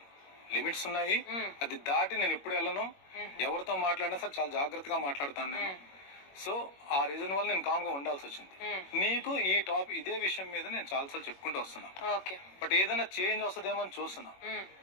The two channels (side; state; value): right; late; 21 ms